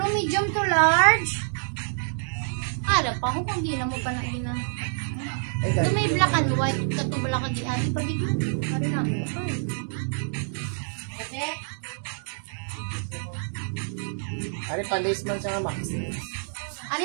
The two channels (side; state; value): left; silent; digital silence